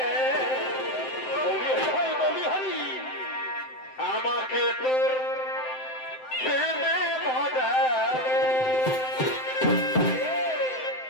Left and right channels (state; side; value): late; right; 7.7 ms